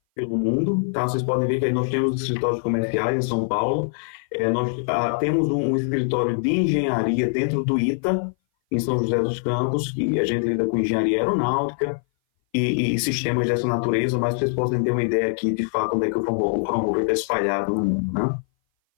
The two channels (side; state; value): right; silent; 59 dB below the other